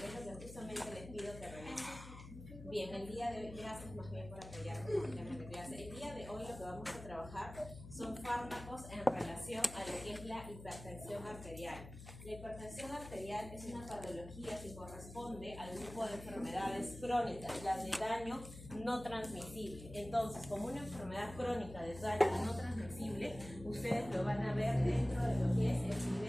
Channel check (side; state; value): left; noise; hum, 13 dB below the sound